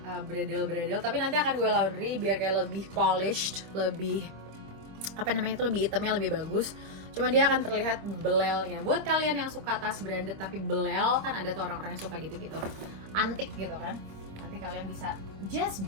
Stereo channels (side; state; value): left; late; 26 ms